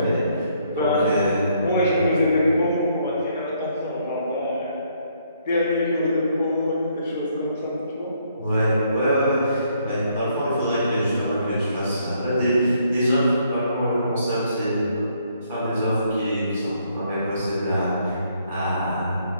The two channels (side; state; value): both; inverted; correlation -0.70